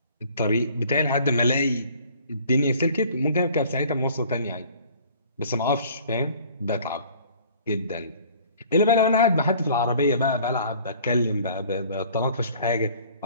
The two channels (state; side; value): inverted; both; correlation -0.52